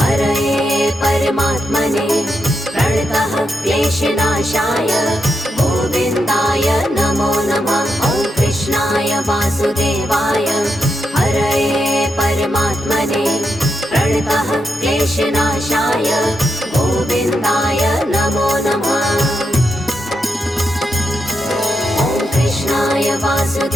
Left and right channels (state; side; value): normal; both; correlation 0.84